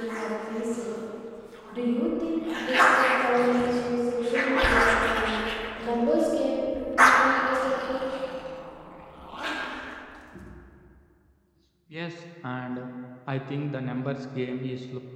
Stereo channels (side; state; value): both; identical; correlation 1.00